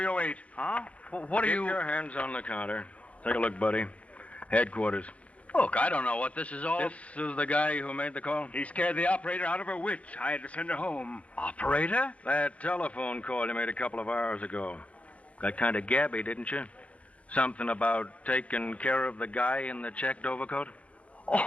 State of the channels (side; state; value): right; late; 0.064 ms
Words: Huh? What are Keep you... your hands on the counter. Take a look, buddy. Headquarters. Look, I don't know what this is all... This is the guy who made the call? He scared the operator out of her wits. I had to send her home. Operator? That telephone call you made a couple of hours ago. Got kind of gabby, didn't you? Something about taking care of the guy in the checked overcoat?